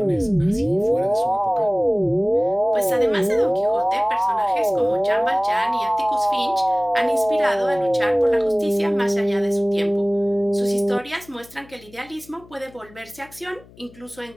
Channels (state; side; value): noise; left; hum, 24 dB below the sound